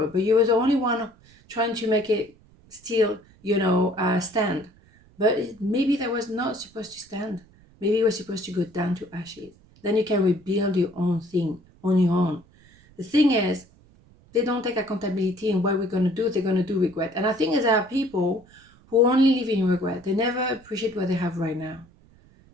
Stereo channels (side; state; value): right; noise; rumble, 28 dB below the sound